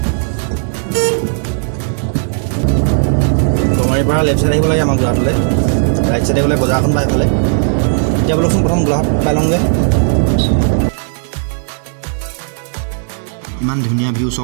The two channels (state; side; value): silent; left; digital silence